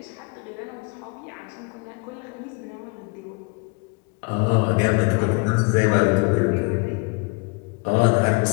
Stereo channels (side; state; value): right; quieter; 31.1 dB